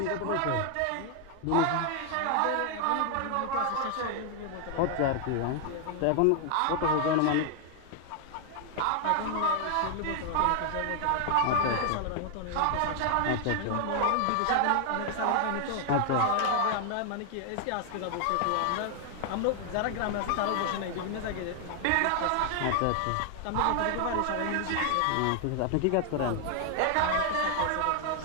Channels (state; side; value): different; both; correlation 0.00